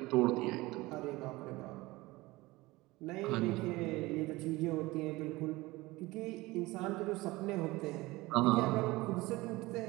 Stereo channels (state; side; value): quieter; left; 20.6 dB